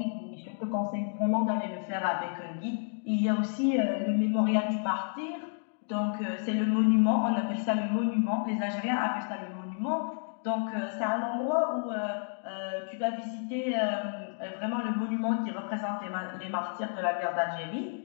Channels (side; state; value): right; silent; 57 dB below the other